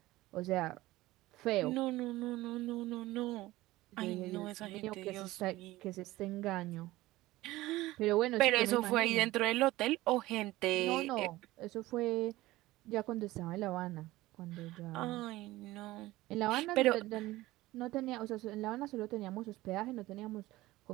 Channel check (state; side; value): quieter; left; 17.9 dB